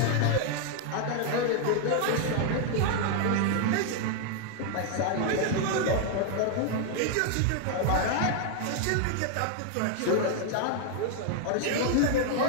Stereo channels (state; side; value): different; both; correlation 0.00